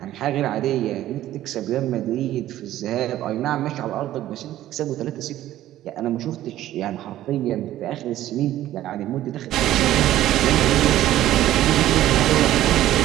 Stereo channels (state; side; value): quieter; left; 13.7 dB